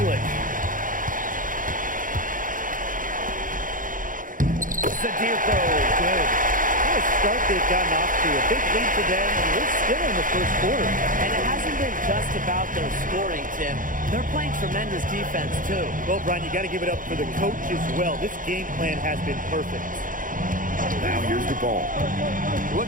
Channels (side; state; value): left; late; 0.39 ms